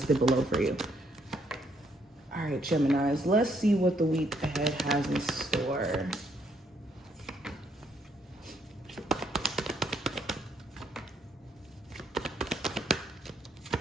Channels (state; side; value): normal; both; correlation 0.71